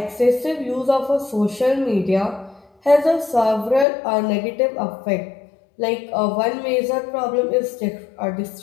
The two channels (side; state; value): right; drops out; at 3.9 s